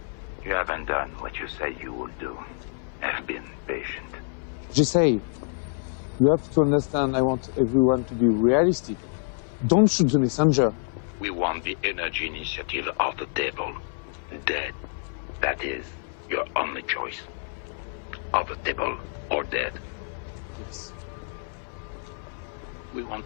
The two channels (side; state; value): right; silent; digital silence